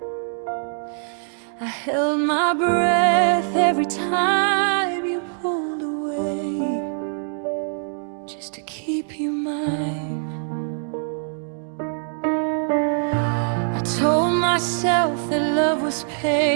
I held my breath every time you pulled away, just to keep you mine. I told myself that love was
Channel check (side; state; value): left; silent; digital silence